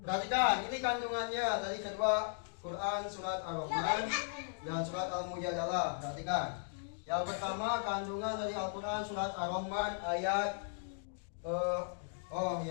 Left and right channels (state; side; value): silent; right; digital silence